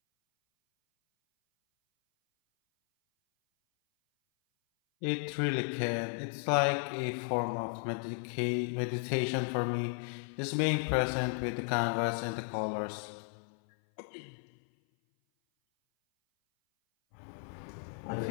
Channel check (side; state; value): right; silent; 55 dB below the other